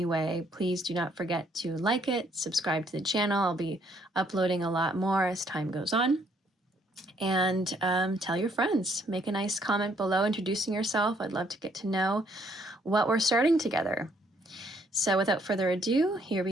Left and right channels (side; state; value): both; normal; correlation 0.67